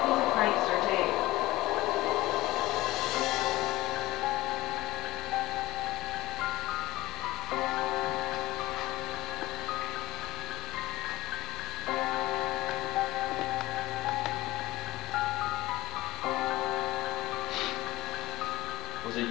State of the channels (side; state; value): right; quieter; 18.0 dB